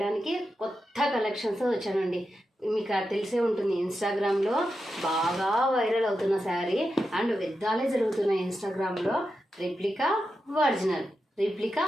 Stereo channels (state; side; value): normal; both; correlation 0.89